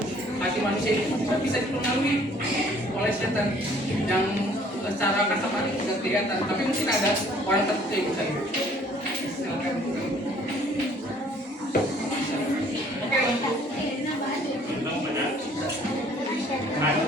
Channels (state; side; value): normal; both; correlation 0.58